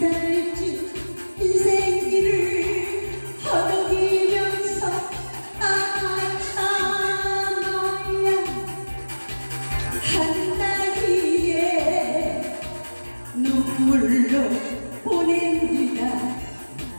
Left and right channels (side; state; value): both; inverted; correlation -1.00